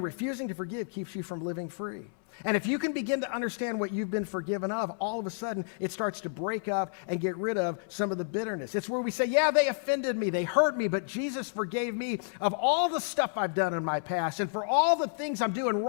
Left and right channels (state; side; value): silent; right; 58 dB below the other